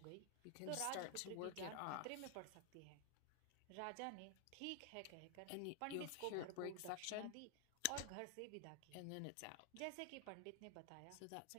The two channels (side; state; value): both; different; correlation 0.00